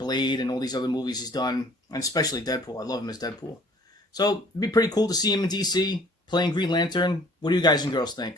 and all these other movies he's done, and especially Deadpool. I love him as Deadpool. So it'd be pretty cool to see him in DC playing Green Lantern. What do you guys and girls think?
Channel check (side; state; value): both; normal; correlation 0.54